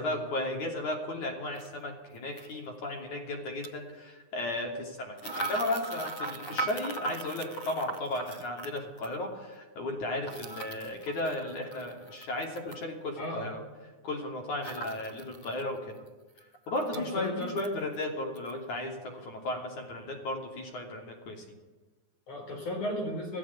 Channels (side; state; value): right; late; 9.7 ms